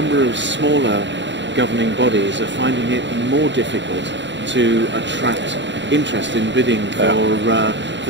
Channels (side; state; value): left; late; 0.53 ms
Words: of smaller governing bodies are finding it more difficult to attract interest in bidding